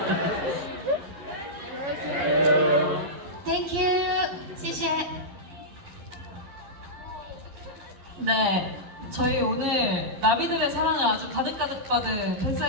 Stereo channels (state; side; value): late; left; 11 ms